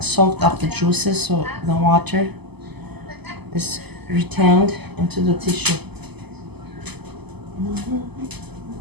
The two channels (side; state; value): left; late; 0.99 ms